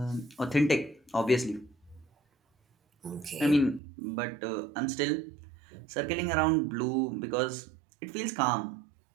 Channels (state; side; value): drops out; left; at 3.8 s